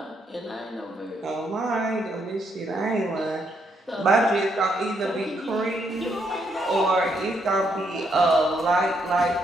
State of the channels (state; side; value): normal; both; correlation 0.75